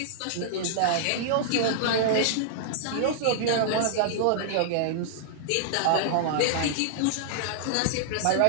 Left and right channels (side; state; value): both; different; correlation -0.01